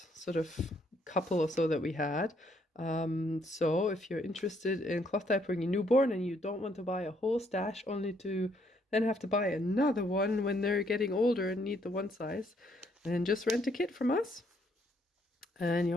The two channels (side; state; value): both; normal; correlation 0.70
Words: sort of couple or so that we had. So if you're interested in cloth diapering your newborn and you don't want to buy a whole stash only to then have to buy another one when they're getting older and need the one size, then just rent a kit from us and